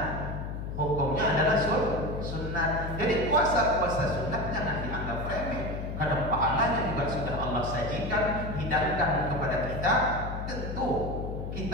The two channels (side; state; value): left; noise; hum, 5 dB below the sound